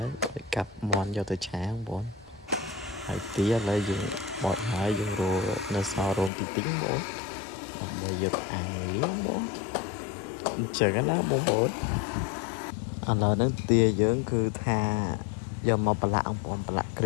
ើយកាប់មាន់យកទៅឆាបងប្អូនហើយទាឥឡូវយើងបោចហើយយើងរកនៅសល់រោមតិចៗបងដើម្បីយកអាំងវាបងអញ្ចឹងណាបងប្អូនឥឡូវហ្នឹងទាយើងគឺថាយកមកប្រឡាក់បងប្អូនប្រឡាក់គ្រ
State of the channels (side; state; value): right; drops out; at 6.3 s